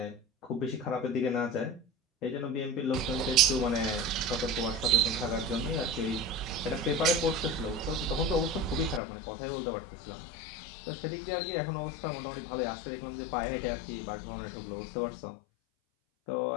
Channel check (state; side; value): drops out; right; at 9.0 s